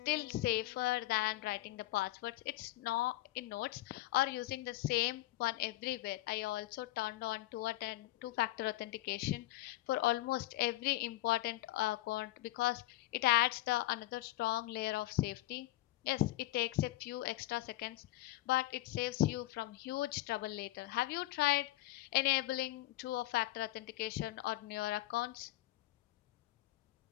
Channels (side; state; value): right; quieter; 17.6 dB